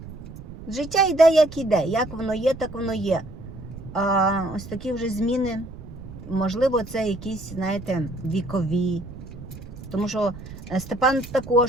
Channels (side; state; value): right; noise; rumble, 14 dB below the sound